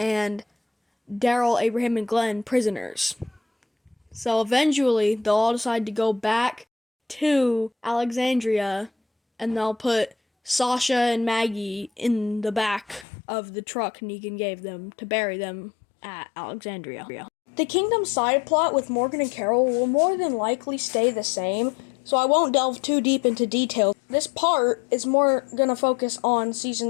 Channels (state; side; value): drops out; right; at 13.1 s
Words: Daryl, Abraham, and Glenn prisoners. So eventually, they'll all decide to go back to Alexandria, and they'll put Sasha and Maggie in the back of the truck Negan gave them to bury them at Alexandria. The Kingdom side plot with Morgan and Carol will more than likely stay the same, so I won't delve too deep into detail. This part is more going to focus on